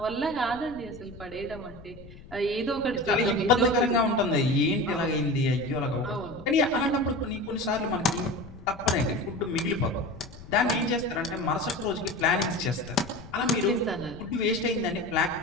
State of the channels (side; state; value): left; noise; rumble, 18 dB below the sound